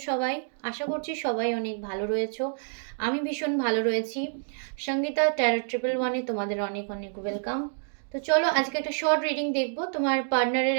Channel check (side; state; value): left; silent; 58 dB below the other